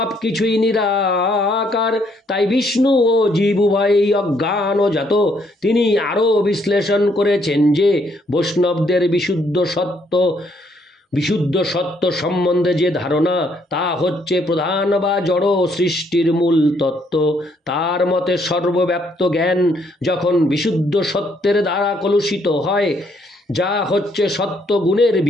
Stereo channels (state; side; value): normal; both; correlation 0.70